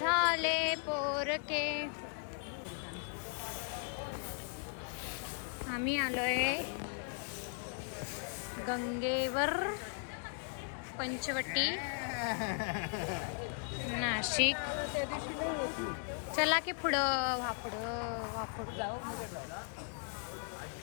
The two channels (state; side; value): silent; right; 53 dB below the other